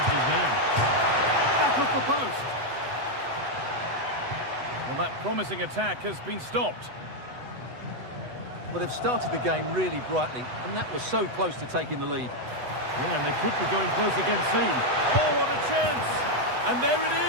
his man. Back off the post. Well, that promising attack has been stopped. Well, they've started the game really brightly, and that was so close to taking the lead. Yeah, and they could be going close again soon. Oh, what a chance! And there it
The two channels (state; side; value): late; left; 8.0 ms